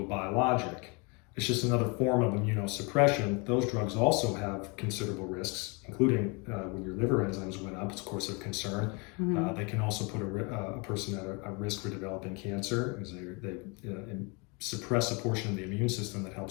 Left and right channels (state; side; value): quieter; right; 30.8 dB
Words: a biologic. It's just another form of immunosuppression. Those drugs also have considerable risks, including when your liver enzymes went up. It's of course of concern. Mm-hmm. They can also put a person at a risk for developing cancer, because they suppress a portion of the immune system that